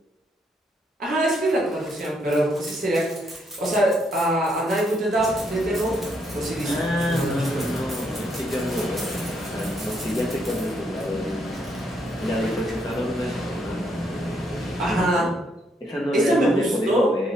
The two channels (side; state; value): both; normal; correlation 0.73